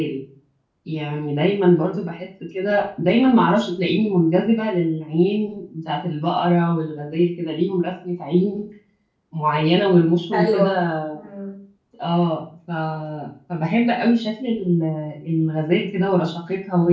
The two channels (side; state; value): both; identical; correlation 1.00